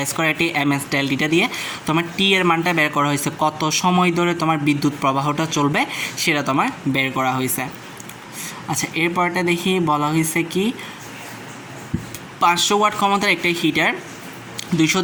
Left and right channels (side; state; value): both; identical; correlation 1.00